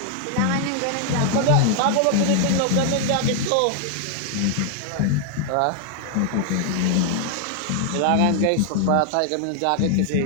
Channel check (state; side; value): different; both; correlation 0.00